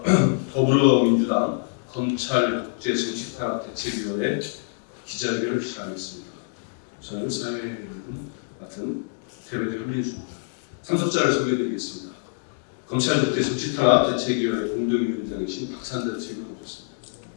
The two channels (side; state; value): right; silent; digital silence